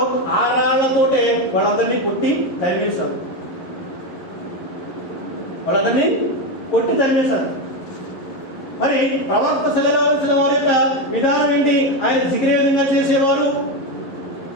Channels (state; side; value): late; right; 11 ms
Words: ఆ రాళ్లతోటే వాళ్ళందరినీ కొట్టి తరిమేశారు. వాళ్ళందరినీ కొట్టి తరిమేశారు. ప్రవక్త సల్లల్లాహు అలైహి వసల్లం వారి యొక్క విధానం ఏంటి? ఆయన జిగిరే విధంగా చేసేవారు,